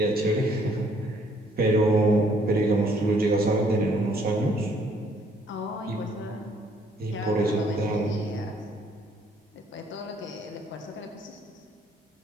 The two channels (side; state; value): both; normal; correlation 0.65